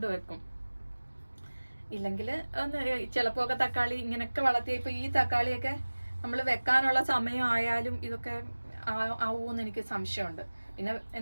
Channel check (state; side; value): inverted; both; correlation -1.00